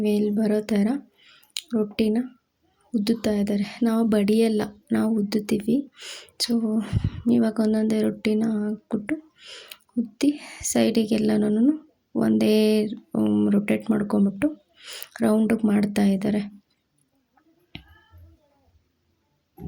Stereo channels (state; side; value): identical; both; correlation 1.00